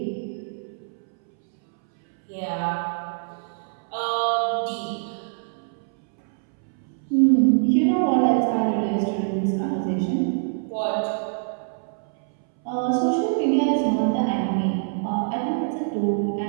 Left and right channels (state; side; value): silent; left; 62 dB below the other